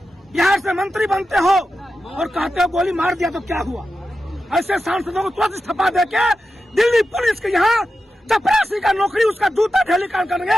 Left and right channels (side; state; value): both; normal; correlation 0.91